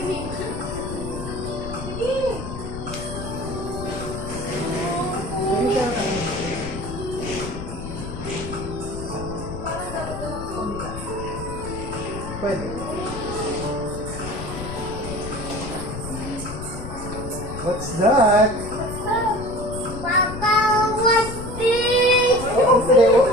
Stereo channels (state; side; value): noise; left; rumble, 8 dB below the sound